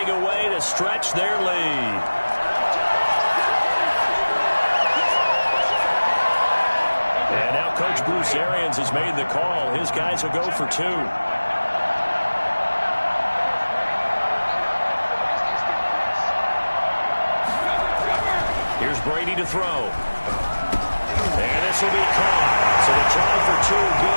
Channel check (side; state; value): both; inverted; correlation -1.00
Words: a way to stretch their lead. And now Coach Bruce Arians has made the call. His guys will go for 2. Here's Brady to throw. And this will be caught. So the try for 2